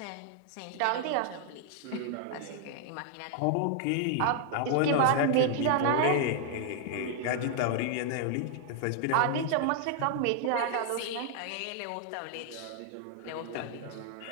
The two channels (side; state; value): both; different; correlation 0.00